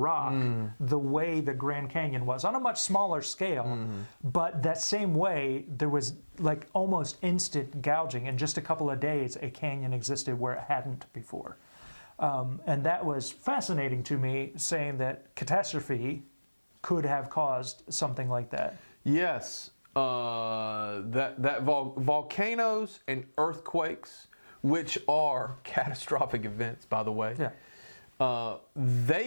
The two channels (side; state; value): both; inverted; correlation -1.00